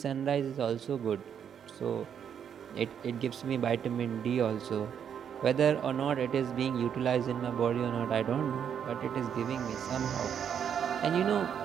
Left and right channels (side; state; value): left; quieter; 8.2 dB